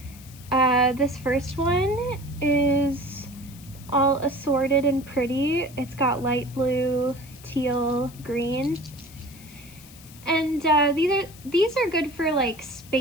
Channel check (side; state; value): left; noise; hiss, 20 dB below the sound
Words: This first one is all assorted and pretty. It's got light blue, teal, green. And these are good for like